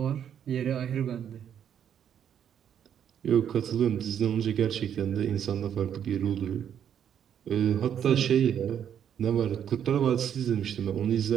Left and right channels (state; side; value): quieter; left; 9.0 dB